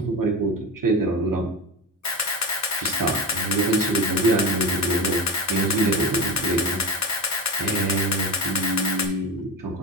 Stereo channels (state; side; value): normal; both; correlation 0.23